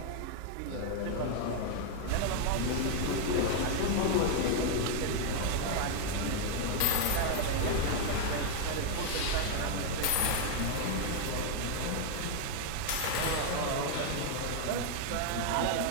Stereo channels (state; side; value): different; both; correlation 0.01